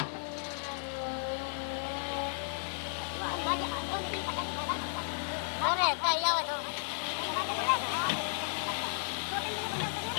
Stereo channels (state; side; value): silent; right; digital silence